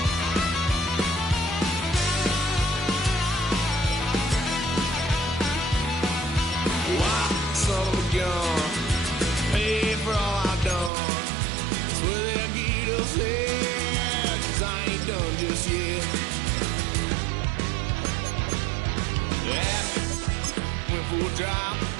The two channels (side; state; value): left; drops out; at 10.9 s